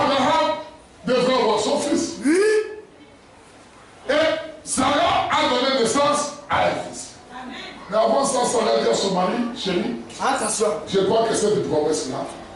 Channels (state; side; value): identical; both; correlation 1.00